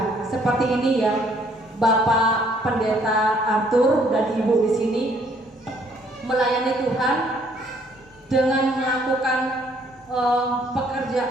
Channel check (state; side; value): normal; both; correlation 0.64